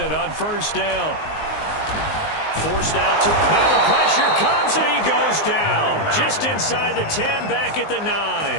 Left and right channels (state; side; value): late; right; 19 ms